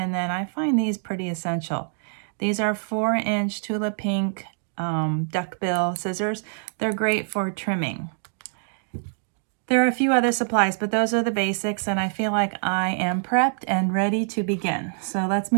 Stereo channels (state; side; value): silent; left; digital silence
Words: then I find these pretty essential. These are 4-inch Tula Pink duckbill scissors. They're great for trimming. There are a few other supplies, but those are the basics, and I feel like I am prepped and ready to begin. So let's